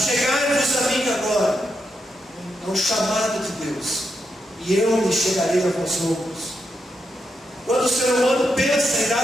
a mim agora. É um chamado de Deus: e eu me chegarei a vós outros. Quando o ser humano pensa em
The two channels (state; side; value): normal; both; correlation 0.83